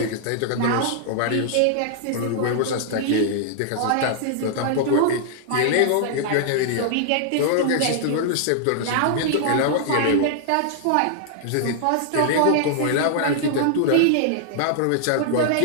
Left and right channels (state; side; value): different; both; correlation -0.01